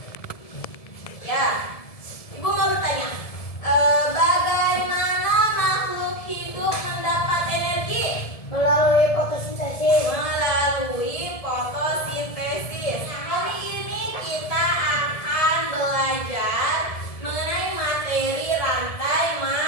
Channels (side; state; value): right; late; 1.7 ms